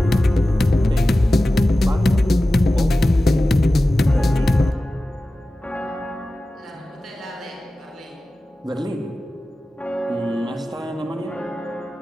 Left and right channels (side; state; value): both; normal; correlation 0.95